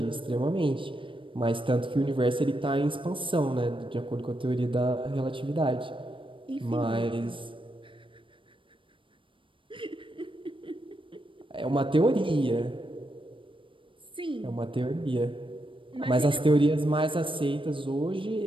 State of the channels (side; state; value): left; late; 0.25 ms